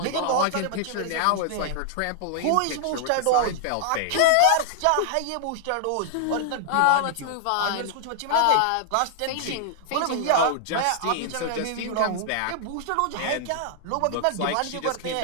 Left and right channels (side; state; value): both; different; correlation -0.01